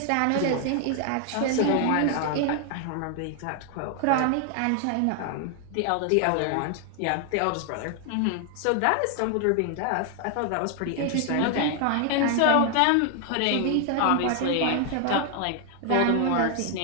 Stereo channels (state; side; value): different; both; correlation 0.00